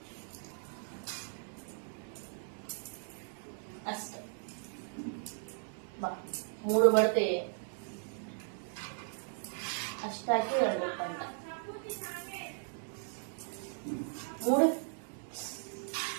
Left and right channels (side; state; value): left; silent; 53 dB below the other